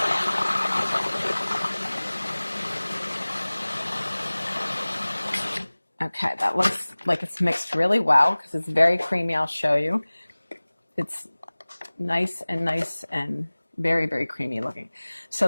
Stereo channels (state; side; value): inverted; both; correlation -1.00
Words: Okay, that looks like it's mixed really well because it's very creamy. I'll show you. It's nice and very, very creamy looking. So